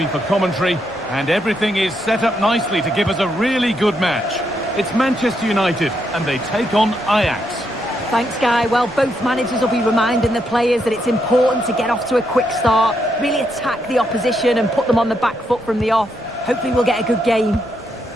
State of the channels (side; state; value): left; noise; rumble, 25 dB below the sound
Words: for commentary, and everything is set up nicely to give us a really good match. It's Manchester United, and they take on Ajax. Thanks, Guy. Well, both managers will be reminding the players that it's important to get off to a quick start, really attack the opposition and put them on the back foot from the off. Hopefully we'll get a good game.